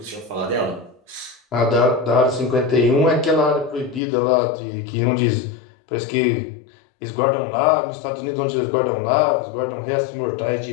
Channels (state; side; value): drops out; right; at 4.0 s